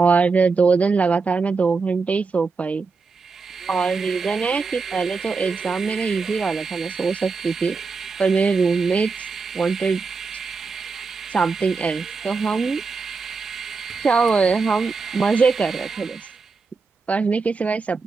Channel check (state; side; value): quieter; left; 4.6 dB